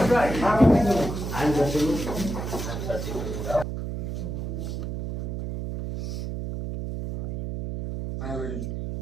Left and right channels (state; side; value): noise; right; hum, 5 dB below the sound